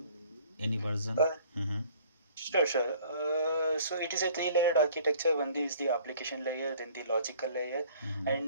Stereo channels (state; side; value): inverted; both; correlation -0.54